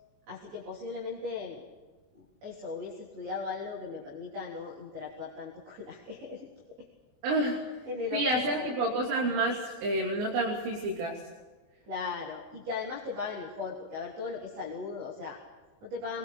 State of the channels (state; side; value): late; left; 24 ms